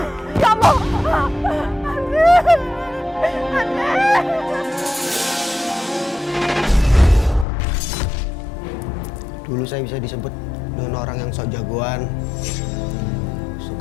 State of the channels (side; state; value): right; drops out; at 7.5 s